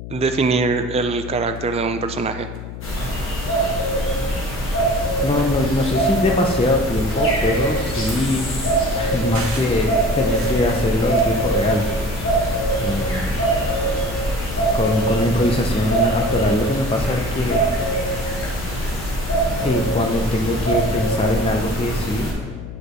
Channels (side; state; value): left; noise; hum, 11 dB below the sound